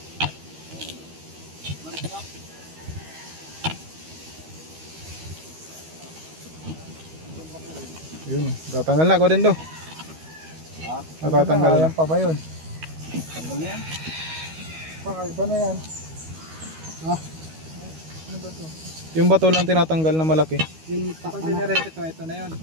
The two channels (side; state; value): left; late; 13 ms